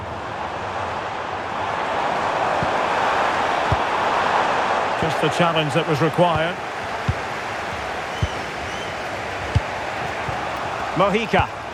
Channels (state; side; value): identical; both; correlation 1.00